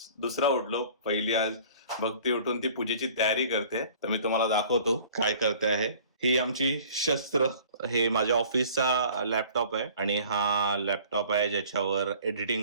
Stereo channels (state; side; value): inverted; both; correlation -0.50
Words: दुसरा उठलो. पहिली आज भक्ती उठून ती पूजेची तयारी करते, तर मी तुम्हाला दाखवतो काय करते आहे. ही आमची शस्त्र. हे माझ्या ऑफिसचा लॅपटॉप आहे आणि हा लॅपटॉप आहे ज्याच्यावर